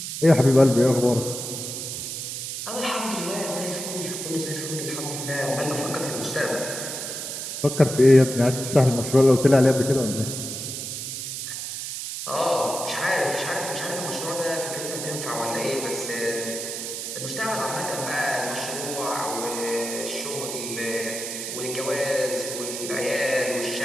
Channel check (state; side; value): noise; right; hiss, 6 dB below the sound